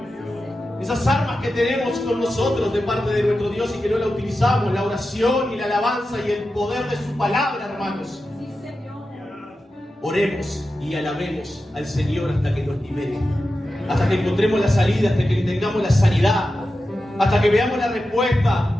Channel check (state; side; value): normal; both; correlation 0.91